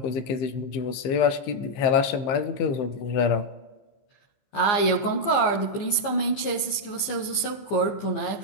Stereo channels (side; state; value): right; late; 15 ms